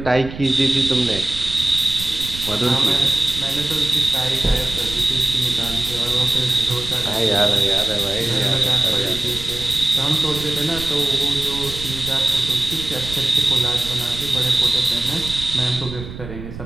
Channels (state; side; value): noise; right; rumble, 11 dB below the sound